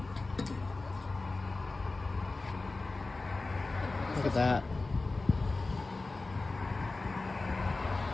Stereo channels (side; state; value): right; quieter; 3.4 dB